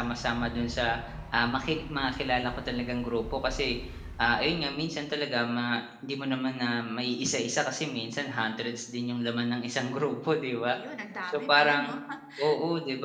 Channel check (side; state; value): both; identical; correlation 1.00